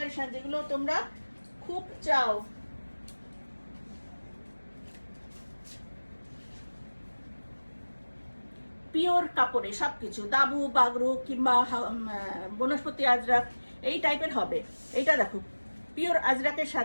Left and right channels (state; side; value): inverted; both; correlation -1.00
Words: যেগুলো তোমরা খুব চাও। পিওর কাপড়ে সবকিছু, দাবু বাগরু কিংবা বনস্পতি আজরাক এই টাইপের হবে। এইটা দেখো পিওর আজরাকের